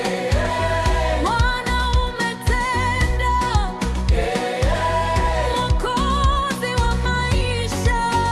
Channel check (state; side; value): identical; both; correlation 1.00